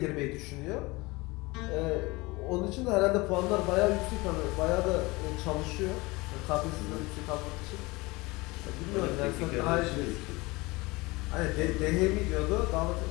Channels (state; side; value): quieter; right; 23.3 dB